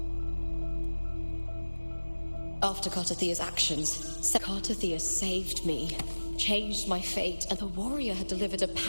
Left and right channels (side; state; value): both; inverted; correlation -1.00